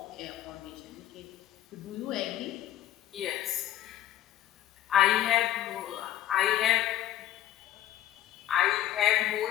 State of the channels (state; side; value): quieter; right; 12.6 dB